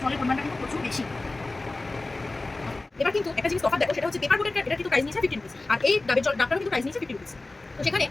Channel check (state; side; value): quieter; right; 3.1 dB